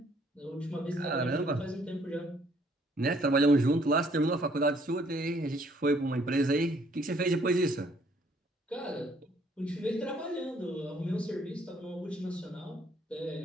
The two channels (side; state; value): both; normal; correlation 0.64